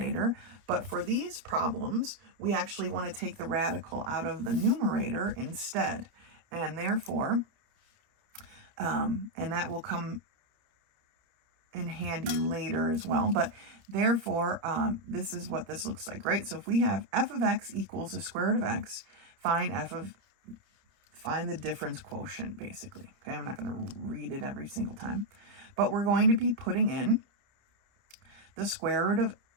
But for these problems, we actually want to take the radical out of the numerator instead. And therefore, and that will come in handy later as well, but therefore this is what this looks like, right? So if we have f of x equals the square root of x, find the difference quotient, basically. Okay, I'm not going to read it every single time, but we're going to be putting in the square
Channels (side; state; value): left; late; 30 ms